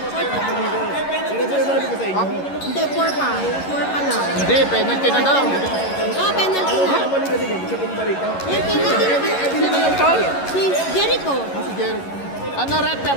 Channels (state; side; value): late; right; 11 ms